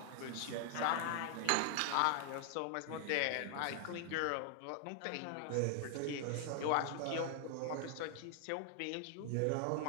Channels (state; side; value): different; both; correlation 0.00